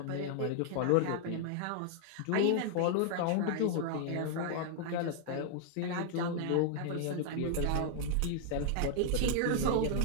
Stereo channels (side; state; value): both; different; correlation -0.01